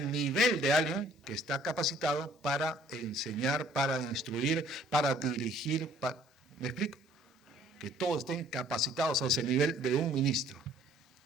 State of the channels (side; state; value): both; normal; correlation 0.58